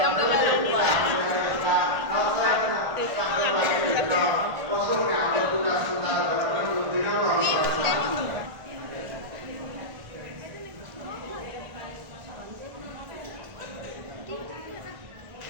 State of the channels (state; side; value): late; left; 1.5 ms